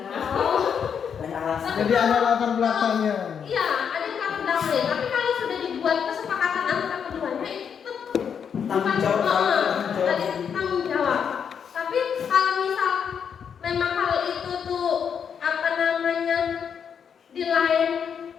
Banyak alasan. Jadi ada latar belakangnya. iya ada yang latar belakangnya, tapi kalau sudah dibuat kesepakatan antara keduanya itu Tanggung jawab. tanggung jawab. Tapi kalau misal memang hal itu tuh di lain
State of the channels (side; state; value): right; quieter; 7.4 dB